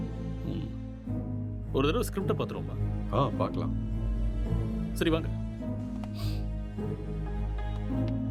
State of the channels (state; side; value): identical; both; correlation 1.00